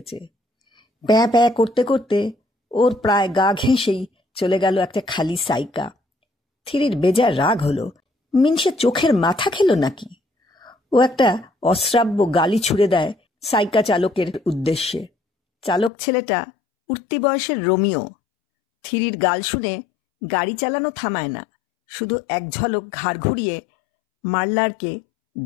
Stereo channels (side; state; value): right; drops out; at 15.9 s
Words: প্যাঁ প্যাঁ করতে করতে ওর প্রায় গা ঘেঁষেই চলে গেল একটা খালি সাইকা। থিরির বেজার রাগ হলো, মিনসে চোখের মাথা খেল নাকি। ও একটা অশ্রাব্য গালি ছুড়ে দেয় সাইকা চালকের উদ্দেশ্যে। চালক ছেলেটা উঠতি বয়সের রোমিও। থিরির গাল শুনে গাড়ি চালানো থামায় না, শুধু এক ঝলক ঘাড় ঘুরিয়ে মারলারকে